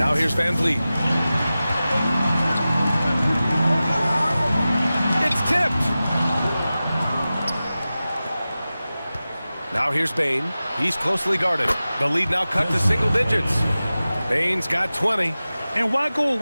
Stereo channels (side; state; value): both; inverted; correlation -0.95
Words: here's VanVleet. It's tipped. Now here's Bain. He's closely guarded. The lead now cut to single digits. Bain's got 20. And why go